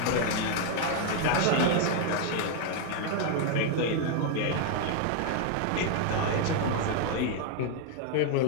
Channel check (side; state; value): both; different; correlation 0.00